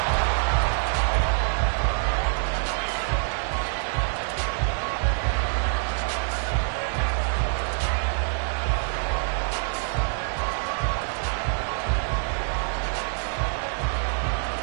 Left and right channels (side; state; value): left; silent; 57 dB below the other